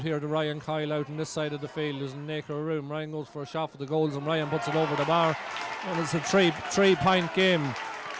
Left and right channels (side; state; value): both; identical; correlation 1.00